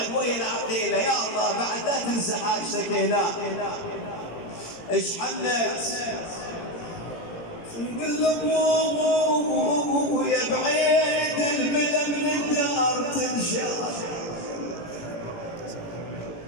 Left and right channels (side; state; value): right; late; 18 ms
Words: ويا العقيله يا الله بعد لا تنسى حاجتك هنا ايش حنت نقول له يا بعيد البلا من الدار تنشال